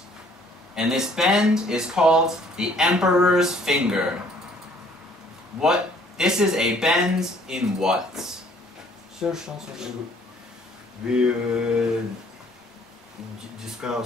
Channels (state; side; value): normal; both; correlation 0.59